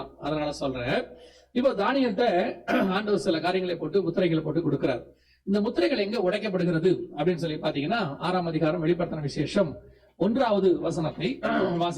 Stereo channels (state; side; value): identical; both; correlation 1.00